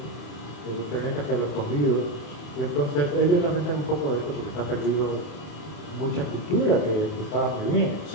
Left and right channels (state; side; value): late; right; 28 ms